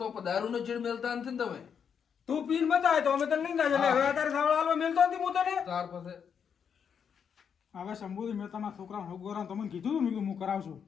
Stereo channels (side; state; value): right; quieter; 7.2 dB